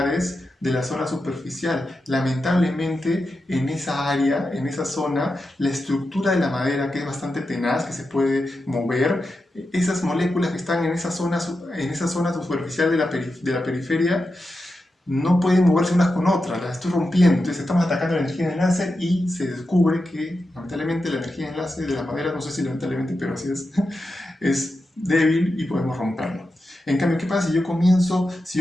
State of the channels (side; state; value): both; normal; correlation 0.89